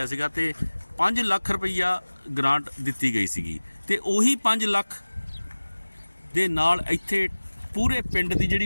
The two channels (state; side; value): inverted; both; correlation -1.00